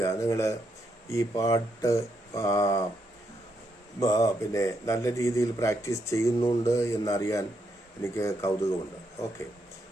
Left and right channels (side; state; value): both; normal; correlation 0.79